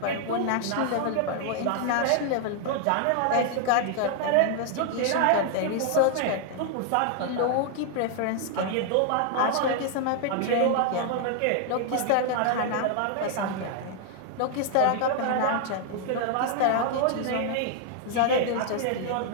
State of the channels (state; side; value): different; both; correlation 0.00